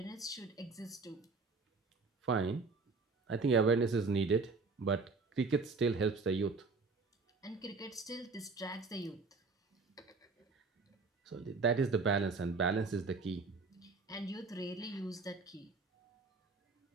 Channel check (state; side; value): quieter; left; 4.1 dB